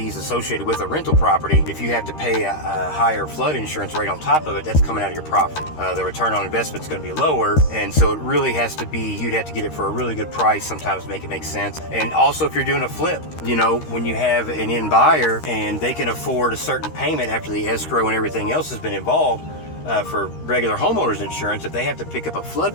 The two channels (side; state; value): right; late; 13 ms